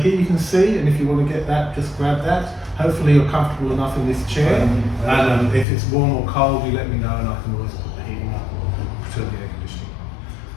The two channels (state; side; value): drops out; right; at 5.7 s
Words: you can see, and if you want to get that, just grab that. Hopefully you're comfortable enough in this chair, and if it's warm or cold, you let me know and I can always put the heating up or turn the air conditioning.